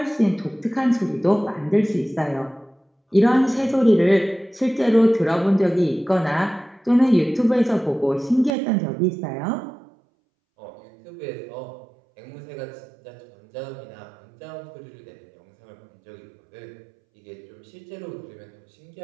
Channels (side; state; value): left; drops out; at 8.5 s